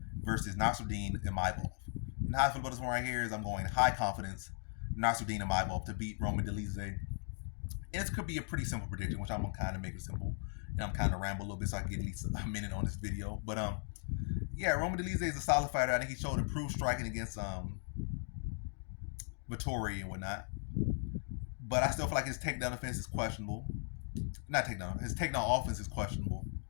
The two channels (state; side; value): silent; right; 53 dB below the other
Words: versus Nassourdine Imavov. And how I feel about this one right here is I'm going high confidence Nassourdine Imavov to beat Dolidze. And this could be a pretty simple prediction, which I'm gonna kind of make it simple. And I'm kind of ramble a little bit so I can get at least a minute on this video. But yeah, Dolidze is a solid fighter. I think he showed improved striking against Vittori and whatnot. But I still feel like his takedown defense is questionable. Not takedown. His takedown offense is questionable.